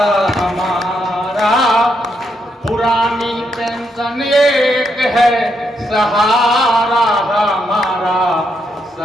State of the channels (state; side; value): normal; both; correlation 0.79